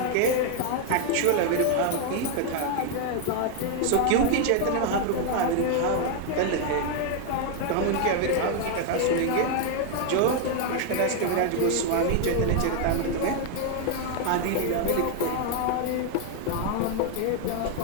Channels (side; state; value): both; different; correlation 0.00